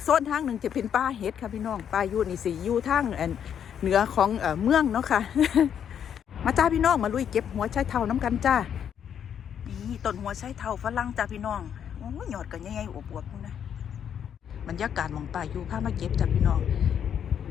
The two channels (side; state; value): right; quieter; 8.7 dB